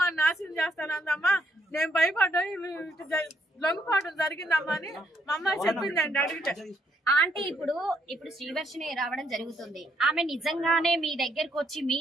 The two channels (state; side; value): normal; both; correlation 0.73